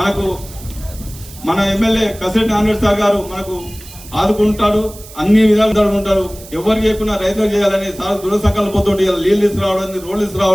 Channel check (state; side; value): noise; right; hiss, 18 dB below the sound